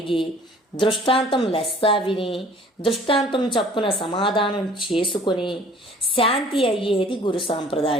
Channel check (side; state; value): both; normal; correlation 0.52